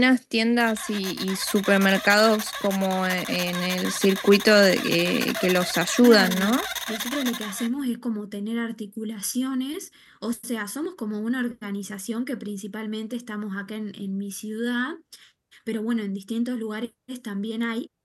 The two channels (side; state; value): both; identical; correlation 1.00